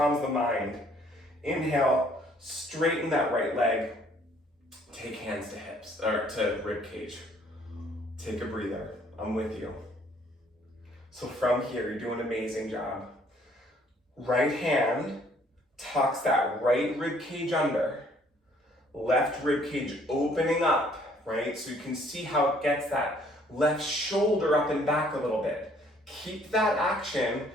mind. Inhale, straighten that right leg. Take hands to hips, or to rib cage. Take a breather. I'm with you. So from here, you're doing an amazing job. Right hand tucks that right rib cage under. Left rib cage opening up, right? So you can see how it gets that left shoulder up and back a little bit. Keep that action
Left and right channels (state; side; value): normal; both; correlation 0.61